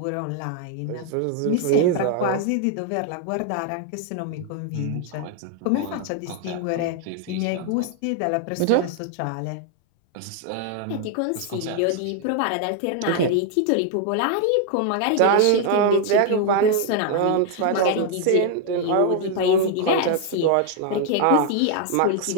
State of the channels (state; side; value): different; both; correlation 0.00